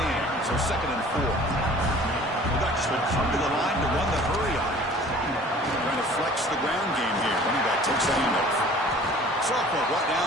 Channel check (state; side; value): normal; both; correlation 0.48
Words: so 2nd and 4. The Ducks will come to the line to run the hurry on. Trying to flex the ground game here. Running back takes the handoff. Sophomore brought